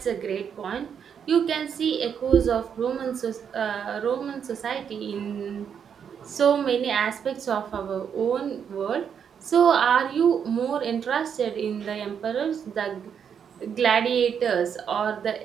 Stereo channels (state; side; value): quieter; left; 7.6 dB